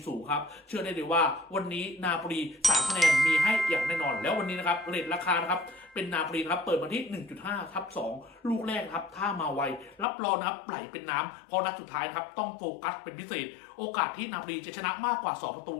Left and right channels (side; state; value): right; drops out; at 10.1 s